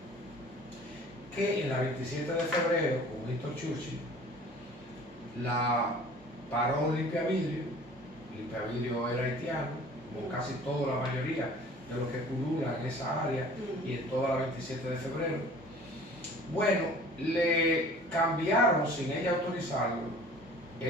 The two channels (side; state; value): both; normal; correlation 0.48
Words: que en la 27 de febrero, con Winston Churchill, la paró Limpia Vidrio. Limpia Vidrio era haitiano, como casi toda la mayoría de los que pululan en esa área y en toda la 27 de febrero. Bueno, le cambiaron sin ella autorizarlo